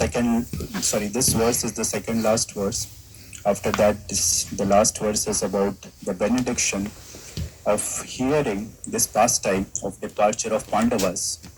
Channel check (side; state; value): both; identical; correlation 1.00